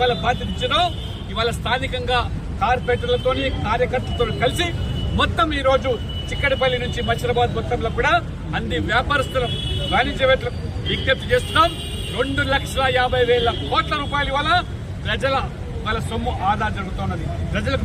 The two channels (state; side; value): identical; both; correlation 1.00